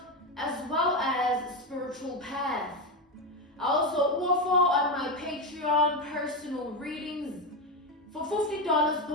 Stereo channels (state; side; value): normal; both; correlation 0.13